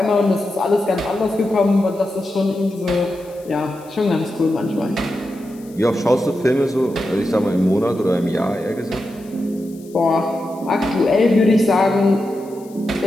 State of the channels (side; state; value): left; noise; hiss, 26 dB below the sound